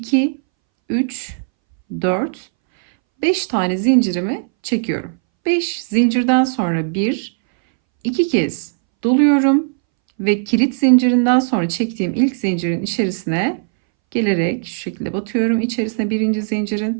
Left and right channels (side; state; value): left; silent; 65 dB below the other